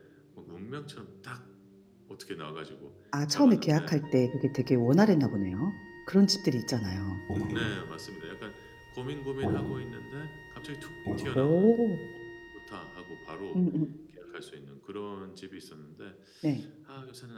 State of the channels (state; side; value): identical; both; correlation 1.00